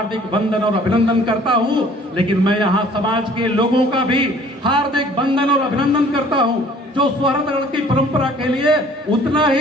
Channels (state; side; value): normal; both; correlation 0.53